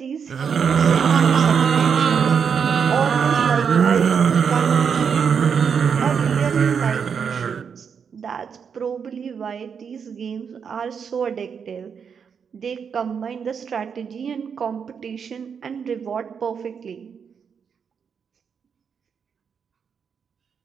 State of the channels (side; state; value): left; quieter; 6.7 dB